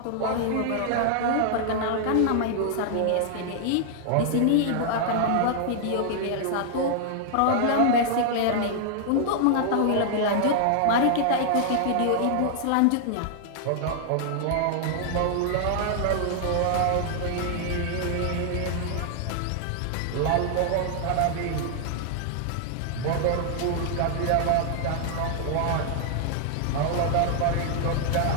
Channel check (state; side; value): different; both; correlation -0.01